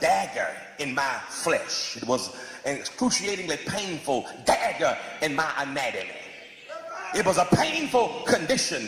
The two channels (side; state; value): both; identical; correlation 1.00